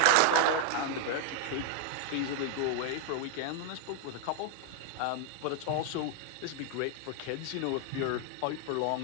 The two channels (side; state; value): both; different; correlation 0.00